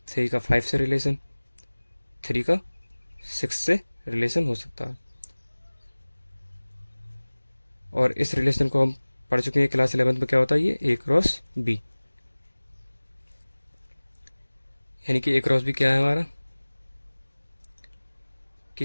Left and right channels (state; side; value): inverted; both; correlation -1.00